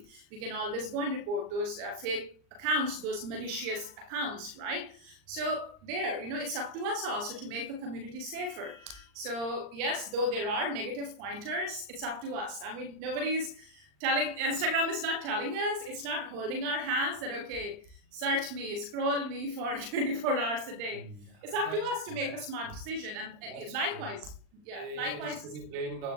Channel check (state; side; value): late; left; 39 ms